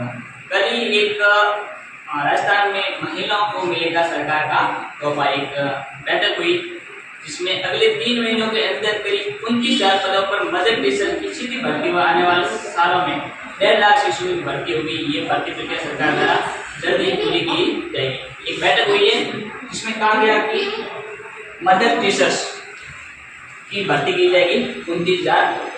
कल ही एक राजस्थान में महिलाओं को मिलेगा सरकार का तोहफा, एक बैठक हुई जिसमें अगले 3 महीनों के अंदर करीब 29,000 पदों पर मदर टीचर की सीधी भर्ती व आने वाले सालों में 1.5 लाख शिशु की भर्ती होगी। ये भर्ती प्रक्रिया सरकार द्वारा जल्द ही पूरी की जाएगी। एक बैठक हुई है जिसमें कहा गया कि मदर टीचर्स की भर्ती की जाएगी 29,000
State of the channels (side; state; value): both; identical; correlation 1.00